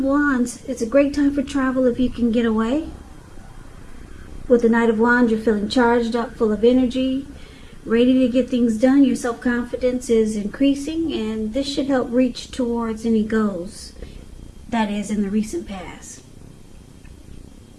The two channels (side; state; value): both; identical; correlation 1.00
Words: Wands, it's a great time for travel if you can get away. With the Knight of Wands, you're feeling charged up, full of energy, ready to get things done. Your self-confidence is increasing, and this should help reach towards any goals that is in the recent past.